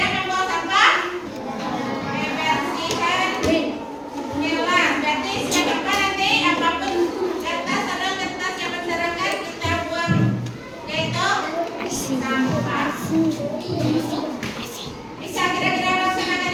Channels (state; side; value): identical; both; correlation 1.00